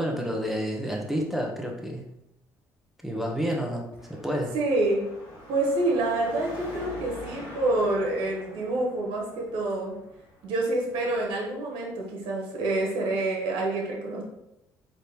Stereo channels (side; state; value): both; normal; correlation 0.59